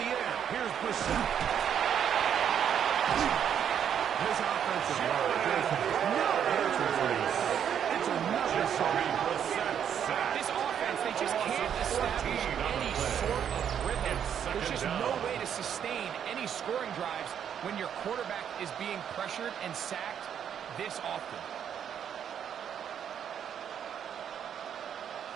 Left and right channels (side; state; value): left; quieter; 8.7 dB